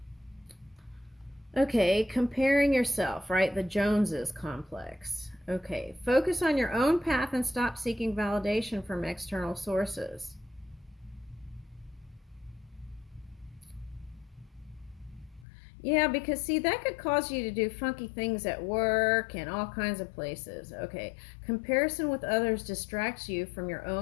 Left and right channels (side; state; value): right; drops out; at 15.5 s